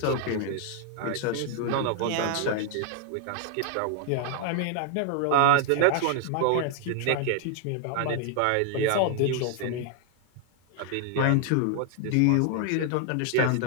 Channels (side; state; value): both; different; correlation 0.00